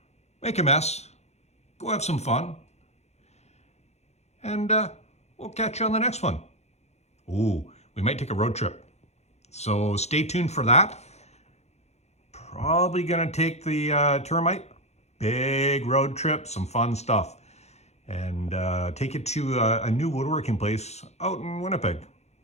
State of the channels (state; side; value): late; right; 0.32 ms